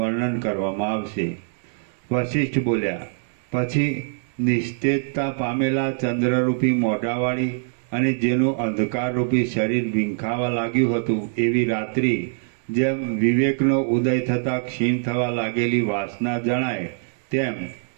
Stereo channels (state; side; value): silent; left; digital silence